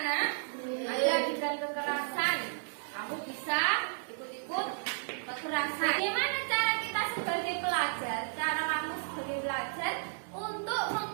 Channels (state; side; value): silent; left; digital silence